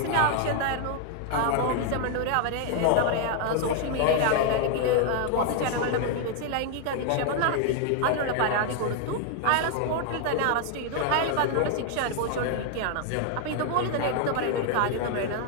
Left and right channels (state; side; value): different; both; correlation 0.00